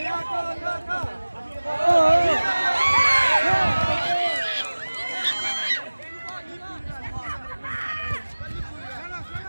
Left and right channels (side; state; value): both; inverted; correlation -1.00